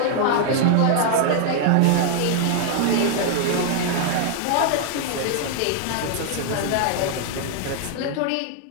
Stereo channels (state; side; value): different; both; correlation -0.01